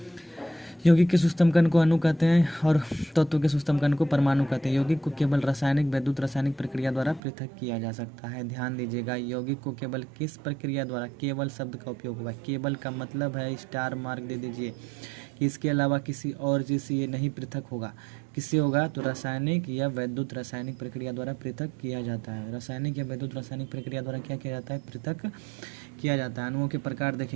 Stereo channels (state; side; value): drops out; left; at 7.2 s